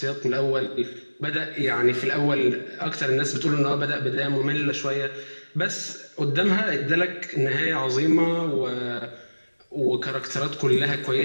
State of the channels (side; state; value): both; inverted; correlation -1.00